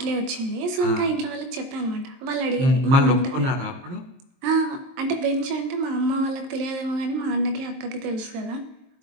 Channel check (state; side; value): late; left; 23 ms